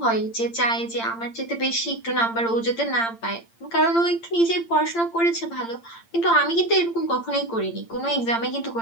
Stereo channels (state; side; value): late; right; 8.8 ms